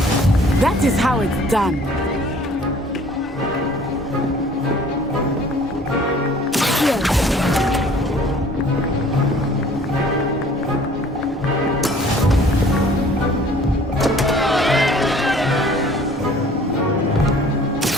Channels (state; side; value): normal; both; correlation 0.53